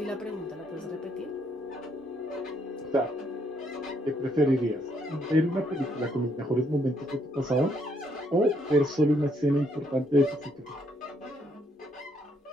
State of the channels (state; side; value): normal; both; correlation 0.72